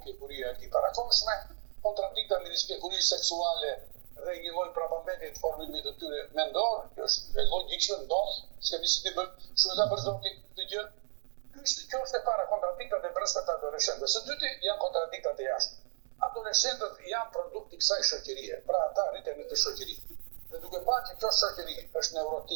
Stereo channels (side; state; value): left; silent; 55 dB below the other